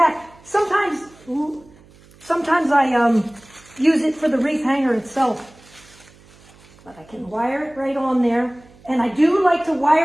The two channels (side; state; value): right; noise; hum, 26 dB below the sound